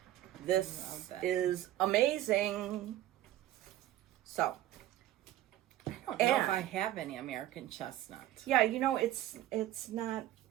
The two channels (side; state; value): left; quieter; 13.8 dB